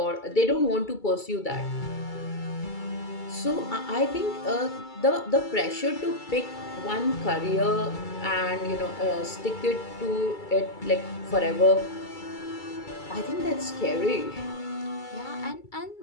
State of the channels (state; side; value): late; right; 2.3 ms